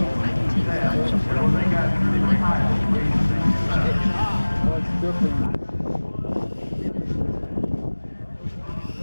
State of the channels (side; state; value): both; inverted; correlation -1.00